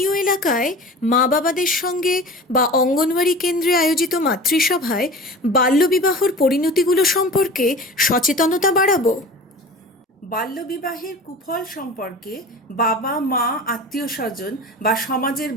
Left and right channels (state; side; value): normal; both; correlation 0.37